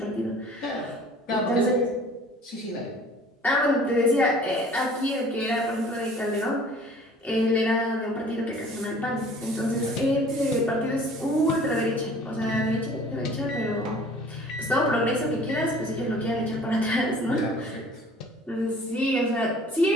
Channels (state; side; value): normal; both; correlation 0.50